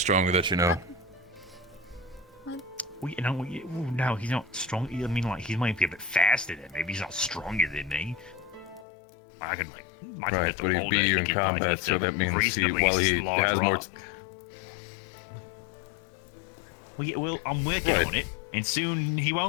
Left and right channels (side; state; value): right; drops out; at 8.8 s